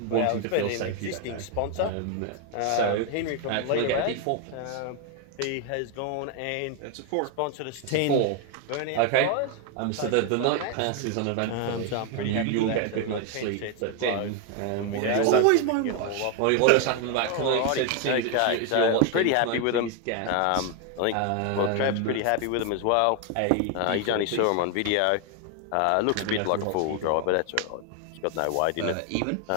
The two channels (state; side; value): different; both; correlation 0.01